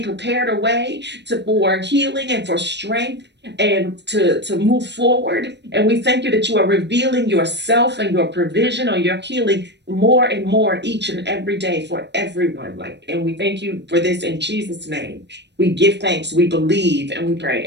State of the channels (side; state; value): left; late; 0.50 ms